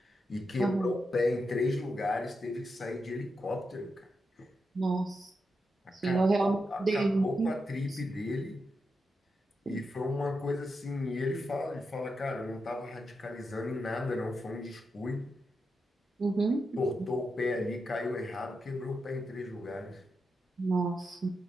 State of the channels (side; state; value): both; normal; correlation 0.86